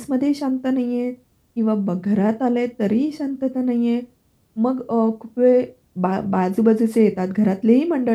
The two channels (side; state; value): both; identical; correlation 1.00